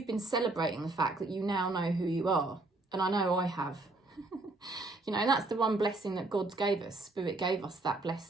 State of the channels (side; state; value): left; quieter; 3.0 dB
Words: been celebrating the fact that you now know who you are. And I know I have. You know, that's the one blessing that God gave us. Spirit gave us that